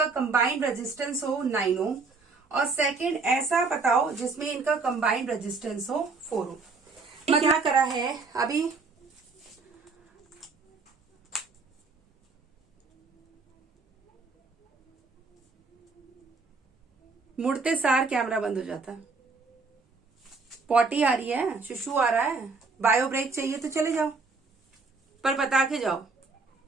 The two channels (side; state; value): left; quieter; 4.3 dB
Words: कंबाइंड रेजिस्टेंस हो 9 ओम, और सेकंड ऐसा बताओ जिसमें इनका कंबाइंड रेजिस्टेंस हो 4 ओम। क्या करा है अभी? मुड़ते सार कैमरा बंद हो जाता। पॉटी आ रही है, शुशु आ रहा है, बायो ब्रेक चाहिए तो चले जाओ, पर बता के जाओ।